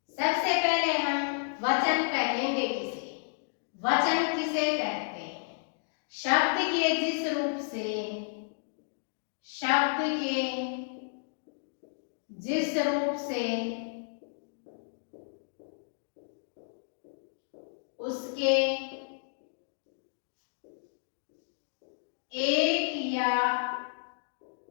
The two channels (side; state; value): right; silent; digital silence